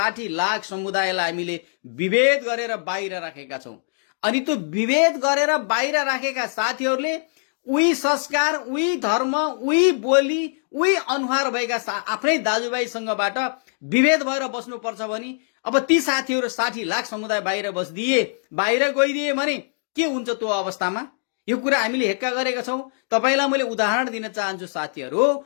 लाख समुदायलाई हामीले विभेद गरेर बाहिर राखेका छौं। अनि त्यो विभेद गरेर बाहिर राखेका साथीहरूले उही संस्कार, उही धर्म, उही बोली, उही अनुहार भएका आफ्नै दाजुभाइसँगबाट विभेद भएर बस्नुपर्छ भने अब ती साथीहरू 60 लाख समुदाय बाहिर बाहिर गइदिए भने के हुन्छ त्यो अवस्थामा? यो कुरा हामीले हेक्का गरेका छौं। तपाईलाई मैले उदाहरण दिन चाहन्छु साथीहरू।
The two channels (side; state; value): right; silent; digital silence